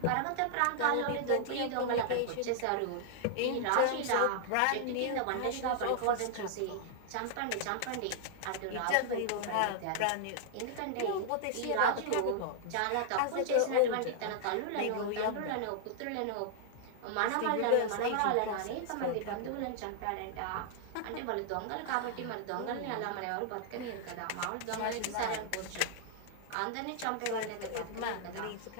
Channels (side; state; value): both; different; correlation -0.01